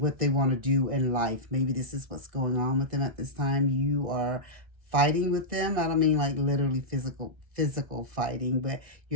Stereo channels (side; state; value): left; late; 1.3 ms